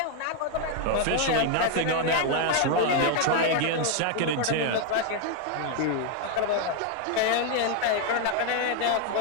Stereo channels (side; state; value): both; different; correlation 0.00